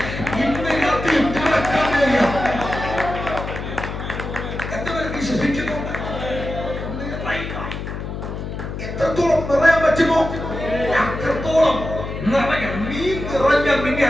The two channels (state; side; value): noise; left; hum, 6 dB below the sound